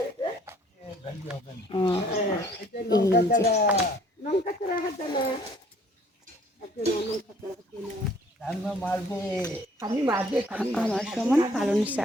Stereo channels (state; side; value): normal; both; correlation 0.58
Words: আমার সমান পালং